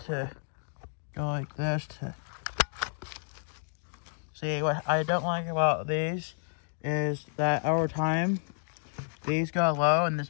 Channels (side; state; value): right; silent; digital silence